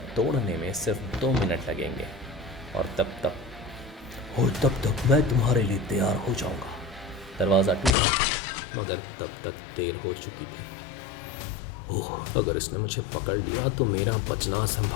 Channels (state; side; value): drops out; right; at 8.0 s